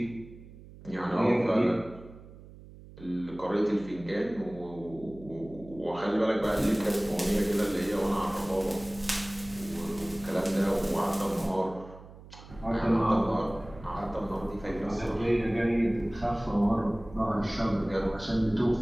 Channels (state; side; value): noise; right; hum, 18 dB below the sound